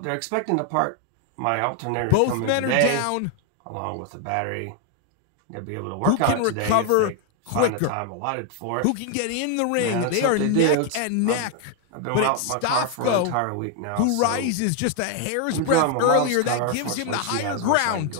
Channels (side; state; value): both; different; correlation 0.00